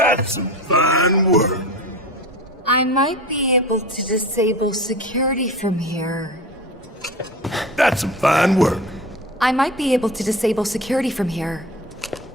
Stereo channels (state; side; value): normal; both; correlation 0.33